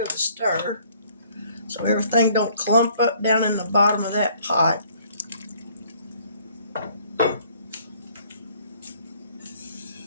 a stir so everything don't clump up down in the bottom of that pot.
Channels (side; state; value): both; inverted; correlation -0.60